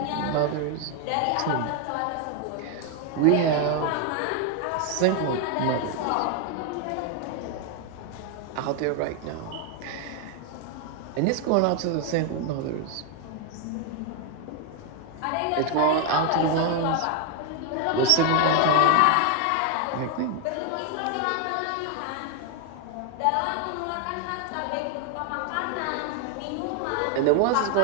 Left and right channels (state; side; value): different; both; correlation 0.01